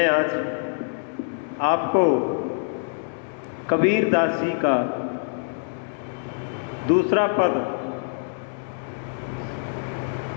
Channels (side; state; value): right; silent; digital silence